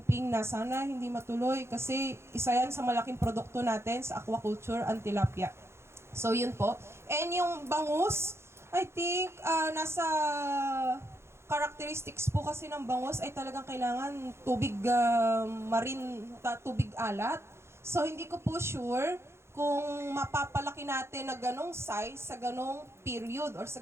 na sana hindi matuloy, kasi isa yan sa malaking produkto natin sa aquaculture, ang tilapia. So yun po. And yung bangus, I think, nasa characteristics po kasi ng bangus ay talagang kailangan tubig tubig alat. So hindi ko po sure kung mapapalaki natin na ganong size sa ganong period or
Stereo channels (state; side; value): late; left; 0.13 ms